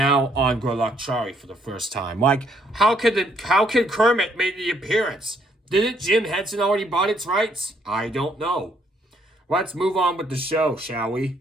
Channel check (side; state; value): both; normal; correlation 0.69